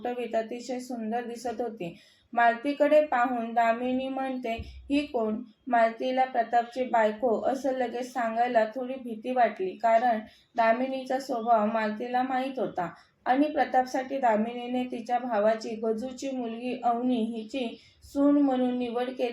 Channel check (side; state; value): both; identical; correlation 1.00